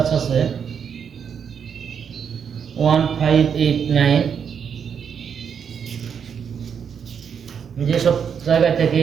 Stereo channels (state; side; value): quieter; left; 7.3 dB